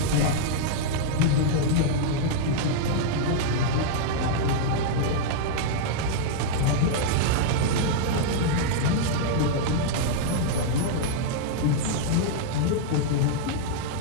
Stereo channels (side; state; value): both; different; correlation -0.01